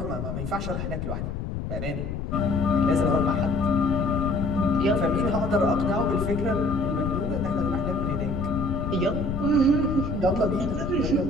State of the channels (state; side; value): noise; left; rumble, 5 dB below the sound